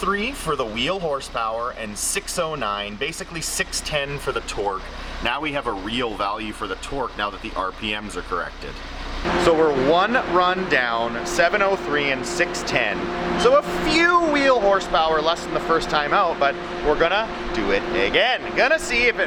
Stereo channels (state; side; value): identical; both; correlation 1.00